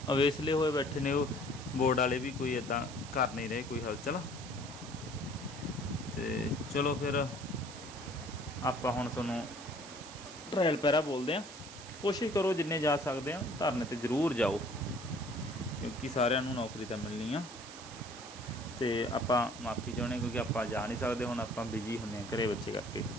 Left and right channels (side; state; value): right; noise; hiss, 14 dB below the sound